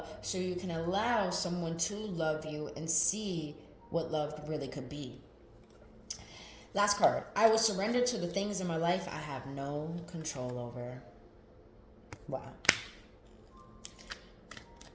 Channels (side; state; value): both; identical; correlation 1.00